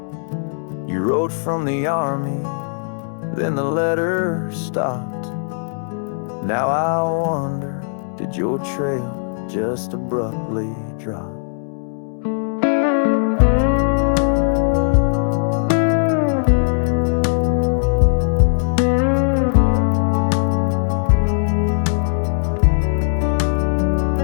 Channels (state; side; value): silent; right; digital silence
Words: You rode from the army, then the letter stopped. Now I wonder, did your trail just abruptly drop?